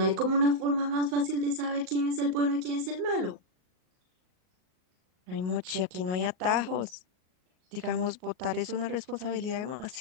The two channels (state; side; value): late; left; 38 ms